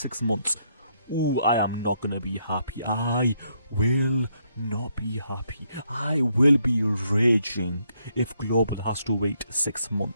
months, I am not gonna be happy. I will not be happy. I will be raging if Global has to wait 6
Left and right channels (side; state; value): both; inverted; correlation -0.75